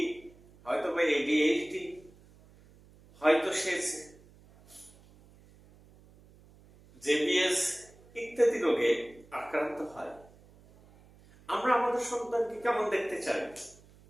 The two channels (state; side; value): noise; right; hum, 25 dB below the sound